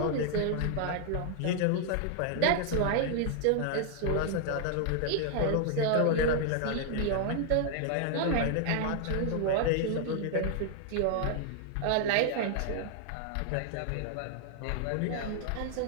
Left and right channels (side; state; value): both; different; correlation 0.00